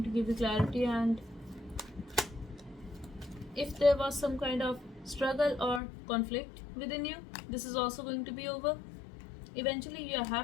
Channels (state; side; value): drops out; right; at 5.8 s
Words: to give you clarity, and if there was some kind of struggle or conflict within you, this is also going to be over. Eventually you are